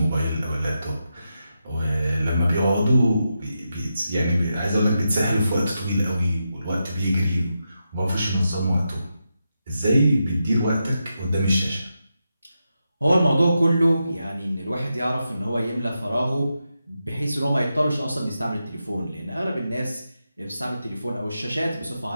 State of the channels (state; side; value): inverted; both; correlation -0.87